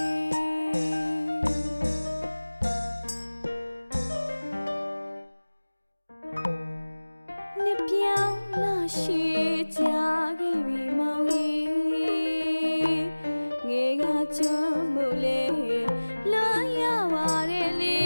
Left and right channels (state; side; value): inverted; both; correlation -1.00